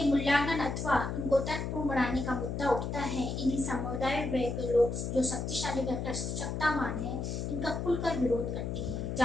मूल्यांकन अथवा उनको तर्कपूर्ण बनाने का मुद्दा उठता है, इन्हीं समुदाय के लोग जो शक्तिशाली व सत्तावान हैं, इनका खुलकर विरोध करते हैं।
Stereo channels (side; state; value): left; noise; hum, 3 dB below the sound